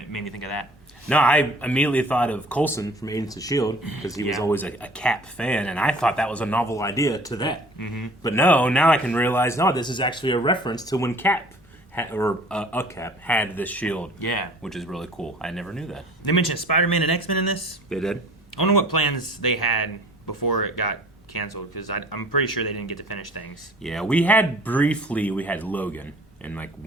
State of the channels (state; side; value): normal; both; correlation 0.49